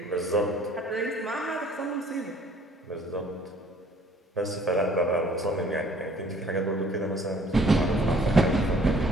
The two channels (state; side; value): normal; both; correlation 0.57